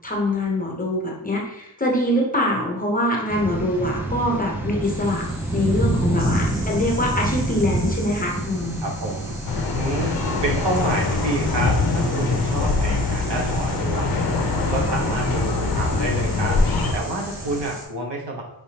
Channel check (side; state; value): both; normal; correlation 0.48